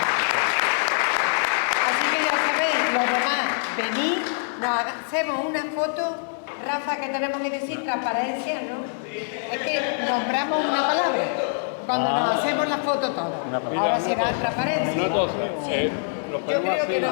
Así que ya sabéis, los demás, venid, hacemos una foto. Rafa, que tenemos que decir transparencia, ¿no? Es que nombramos una palabra cuando nos hacemos la foto todos. Ahora será transparencia. Sí. Yo creo que no.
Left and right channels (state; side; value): silent; right; digital silence